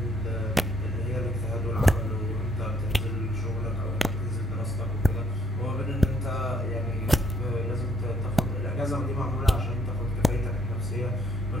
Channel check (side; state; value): both; normal; correlation 0.69